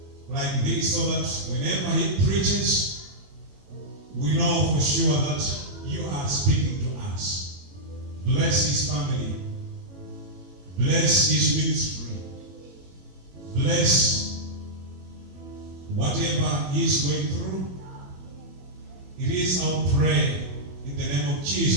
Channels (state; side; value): late; left; 21 ms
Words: like this, so that whenever he preaches, we know for sure that you are speaking to us. Bless his family. Bless his ministry. Bless whatever he is going through. It is our prayer in the name of